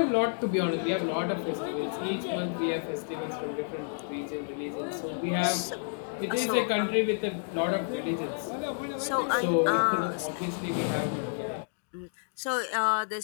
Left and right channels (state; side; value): silent; right; digital silence